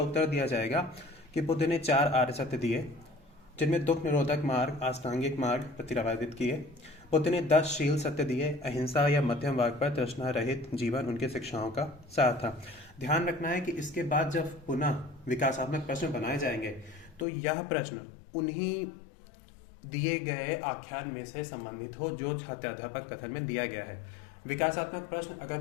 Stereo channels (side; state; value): right; drops out; at 17.2 s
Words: दिया जाएगा कि बुद्ध ने 4 आर्य सत्य दिए, जिनमें दुख निरोधक मार्ग, अष्टांगिक मार्ग प्रतिपादित किए। बुद्ध ने 10 शील सत्य दिए। अहिंसा या मध्यम मार्ग पर तृष्णा रहित जीवन उनके शिक्षाओं का सार था। ध्यान रखना है कि इसके बाद जब पुनः विकासात्मक प्रश्न बनाए जाएंगे, तो यह प्रश्न उन्हीं दिए गए आख्यान में से संबंधित हो जो छात्राध्यापक कथन में दिया गया है। विकासात्मक प्रश्न अगर